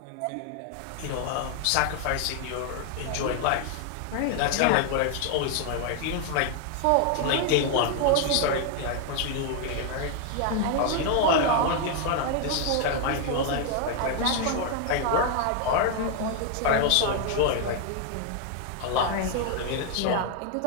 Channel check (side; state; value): both; different; correlation 0.00